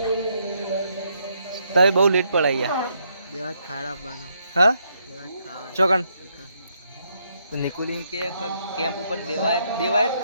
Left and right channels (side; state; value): both; inverted; correlation -0.75